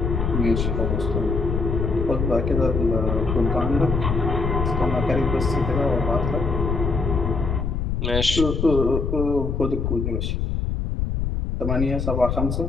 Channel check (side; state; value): left; noise; rumble, 1 dB below the sound